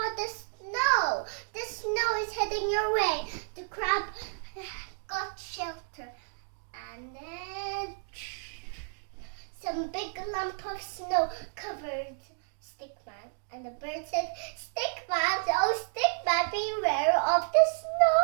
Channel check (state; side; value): silent; left; digital silence